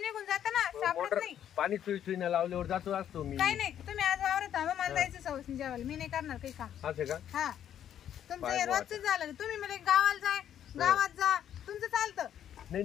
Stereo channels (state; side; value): quieter; right; 10.1 dB